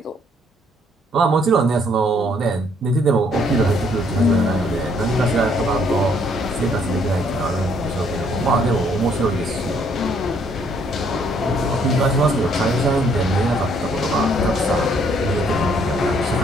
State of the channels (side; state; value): both; normal; correlation 0.66